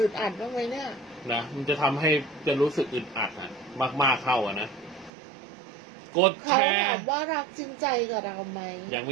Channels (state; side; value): drops out; left; at 5.1 s